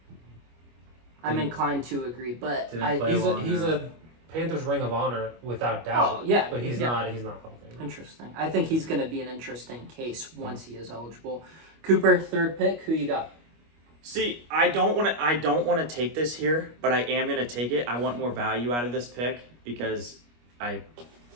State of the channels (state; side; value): late; left; 25 ms